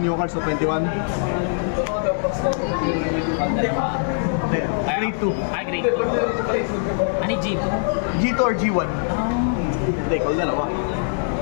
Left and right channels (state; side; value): silent; right; digital silence